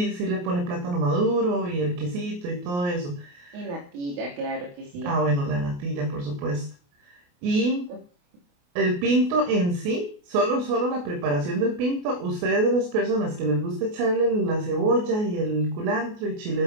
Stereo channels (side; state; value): left; late; 28 ms